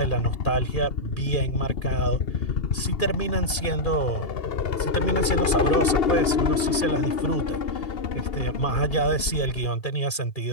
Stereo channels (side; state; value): right; late; 2.4 ms